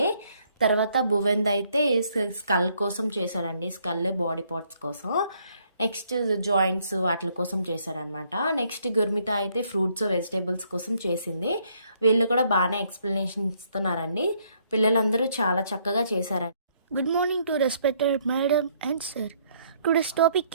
తర్వాత భువెంద్ అయితే స్కల్ కోసం చేశాడండి, స్కల్ బాడీ పార్ట్స్ కోసం. నెక్స్ట్ జాయింట్స్ వాటి కోసం చేశారనమాట. నెక్స్ట్ గుర్మిత అయితే ఫ్రూట్స్ వెజిటేబుల్స్ కోసం చేసింది. వీళ్ళు కూడా బాగానే ఎక్స్ప్లెనేషన్ ఇస్తున్నారండి. పిల్లలందరూ చాలా చక్కగా చేశారండి. Good morning to respected madam and sir. Today's topic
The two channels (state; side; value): inverted; both; correlation -0.69